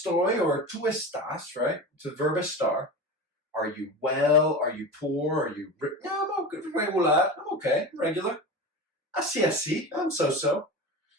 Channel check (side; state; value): both; normal; correlation 0.28